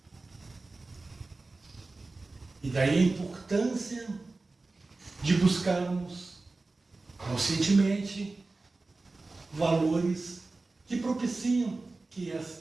E daí a importância de buscarmos conscientemente valores que propiciam que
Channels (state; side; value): quieter; left; 3.4 dB